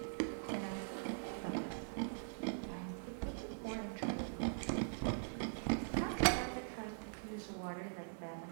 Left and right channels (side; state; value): left; silent; digital silence